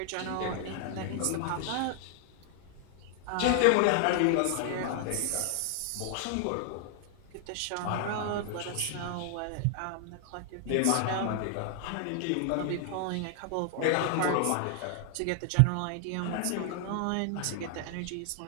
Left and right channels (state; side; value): different; both; correlation 0.00